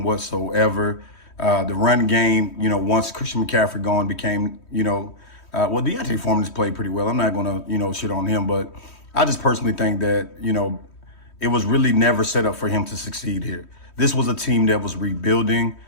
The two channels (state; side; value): late; right; 3.1 ms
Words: whatsoever. The run game, once Christian McCaffrey gone became, Deontay Foreman has played pretty well. I'm not going to, shit on him, but I just personally think that, it was really never set up for him to succeed here. This was a team that was rebuilding.